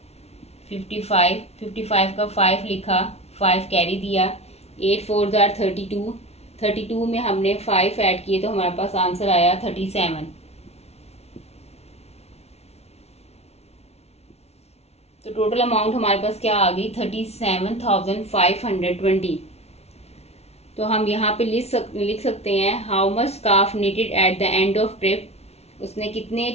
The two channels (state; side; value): late; right; 0.31 ms